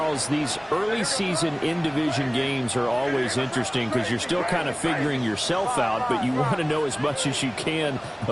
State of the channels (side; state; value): both; identical; correlation 1.00